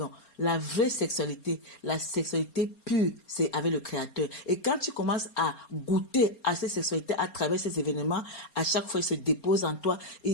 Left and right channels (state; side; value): late; right; 4.3 ms